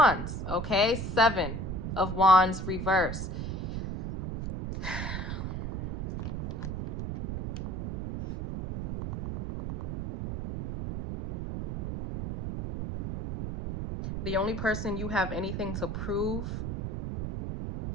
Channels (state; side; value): noise; right; rumble, 4 dB below the sound